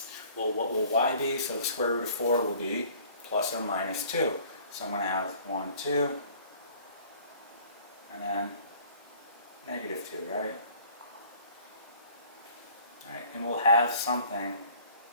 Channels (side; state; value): both; inverted; correlation -0.53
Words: Well, what will y be? So the square root of 4 will be plus or minus 2. So I'm going to have 1, 2, and then negative 2, right? Alright, and we'll have something